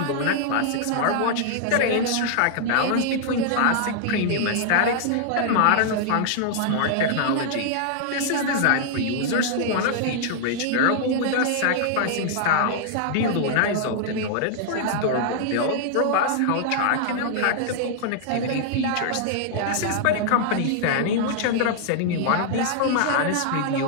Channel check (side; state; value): both; different; correlation -0.01